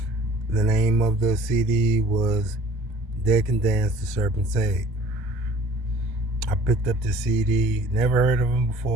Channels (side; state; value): both; normal; correlation 0.50